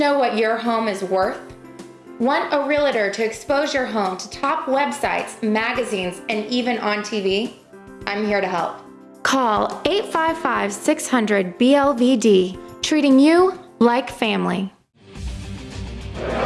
what your home is worth? Want a realtor to expose your home to top websites, magazines, and even on TV? I'm here to help. Call 855-600-BLVD, treating you like family.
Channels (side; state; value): both; identical; correlation 1.00